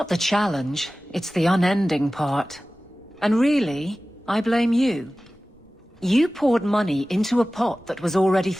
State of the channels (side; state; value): both; normal; correlation 0.97